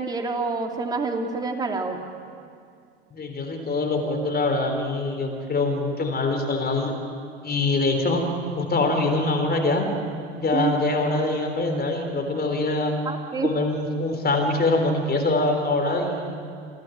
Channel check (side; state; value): both; normal; correlation 0.29